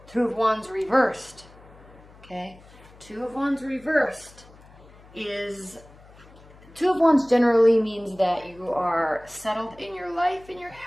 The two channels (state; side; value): noise; left; hum, 23 dB below the sound